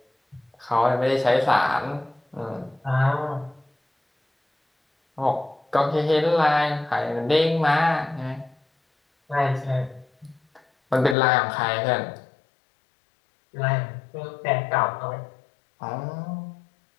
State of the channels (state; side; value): drops out; right; at 11.2 s